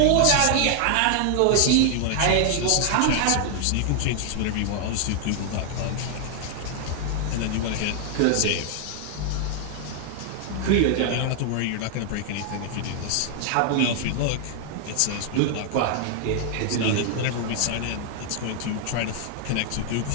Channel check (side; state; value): both; different; correlation 0.00